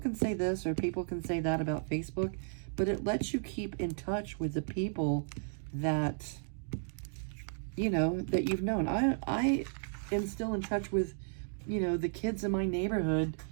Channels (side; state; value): left; silent; digital silence